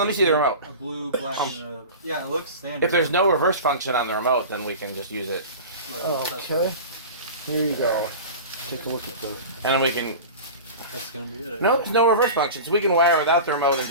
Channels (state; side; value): inverted; both; correlation -0.33